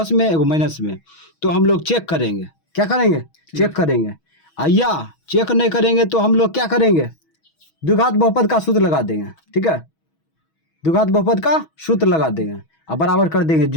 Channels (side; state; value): right; late; 6.2 ms